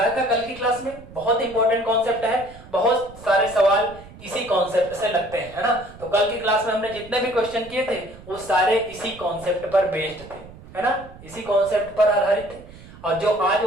था कल की क्लास में, बहुत इंपॉर्टेंट कॉन्सेप्ट है, बहुत सारे सवाल इसी कॉन्सेप्ट से लगते हैं, है ना। तो कल की क्लास में हमने जितने भी क्वेश्चन किए थे वो सारे इसी कॉन्सेप्ट पर बेस्ड थे, है ना, इसी कॉन्सेप्ट पर आधारित थे। और जो आज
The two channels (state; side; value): noise; right; rumble, 19 dB below the sound